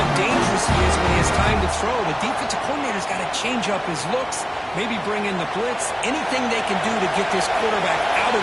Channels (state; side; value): identical; both; correlation 1.00